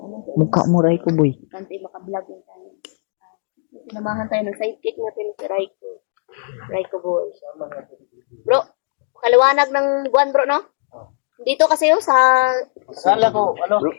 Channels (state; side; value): silent; right; digital silence